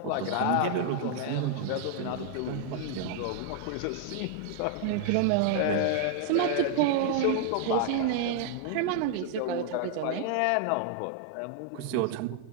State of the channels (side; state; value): both; different; correlation 0.00